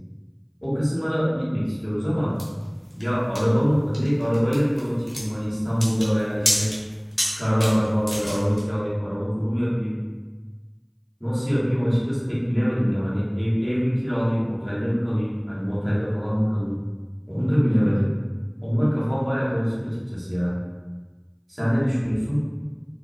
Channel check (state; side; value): identical; both; correlation 1.00